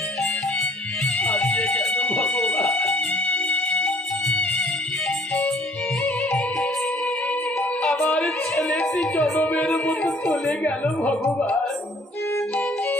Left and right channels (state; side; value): normal; both; correlation 0.57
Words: আমার ছেলেটি জনমের মতো চলে গেল ভগবান।